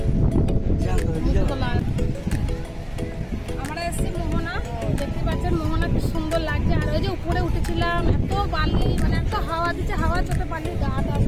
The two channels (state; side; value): identical; both; correlation 1.00